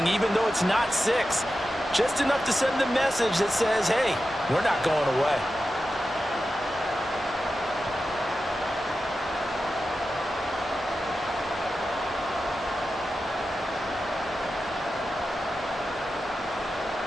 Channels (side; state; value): both; normal; correlation 0.92